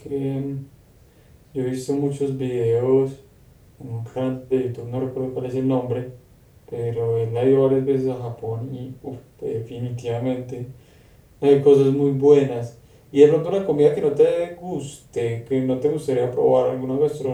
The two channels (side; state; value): both; identical; correlation 1.00